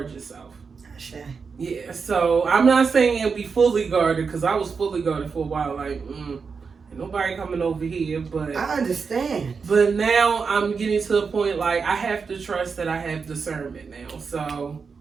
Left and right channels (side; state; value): left; quieter; 5.4 dB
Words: yourself. Sure. Yeah, so I'm not saying it'll be fully guarded because I was fully guarded for a while. Like, ain't nobody coming over here, but I understand. But now I'm getting to the point like I have to trust that I have discernment now. So,